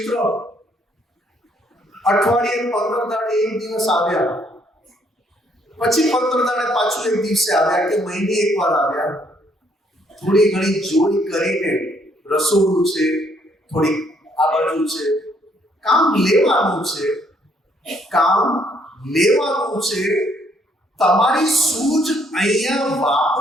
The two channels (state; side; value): normal; both; correlation 0.68